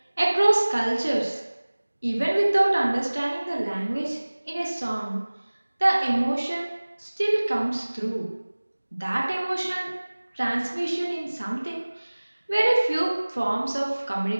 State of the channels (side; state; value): both; inverted; correlation -1.00